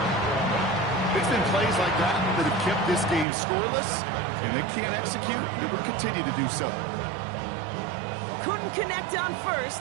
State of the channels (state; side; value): drops out; left; at 3.2 s